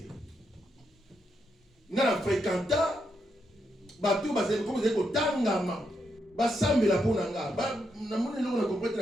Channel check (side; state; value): both; normal; correlation 0.81